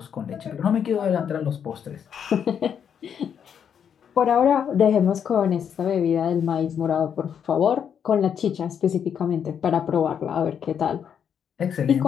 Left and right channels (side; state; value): right; quieter; 8.1 dB